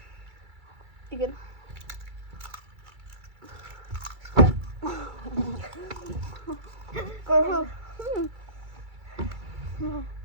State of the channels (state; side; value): late; left; 2.3 ms